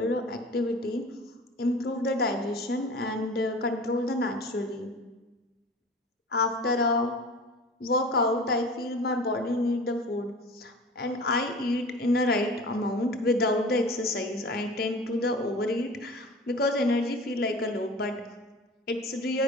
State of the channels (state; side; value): normal; both; correlation 0.39